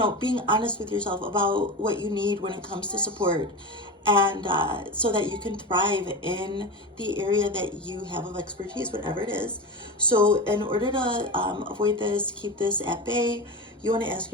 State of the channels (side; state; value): both; normal; correlation 0.24